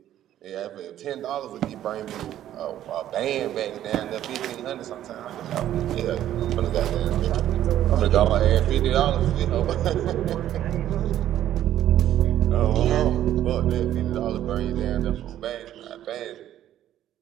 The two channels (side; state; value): left; quieter; 12.0 dB